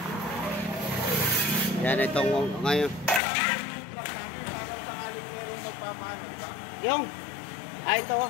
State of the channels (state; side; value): drops out; right; at 3.2 s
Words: Yan itong ngayon. Yung ito.